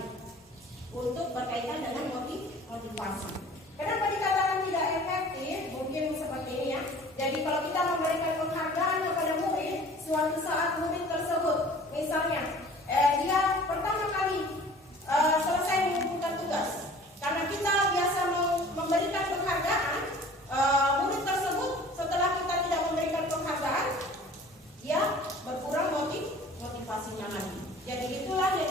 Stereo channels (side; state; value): both; normal; correlation 0.47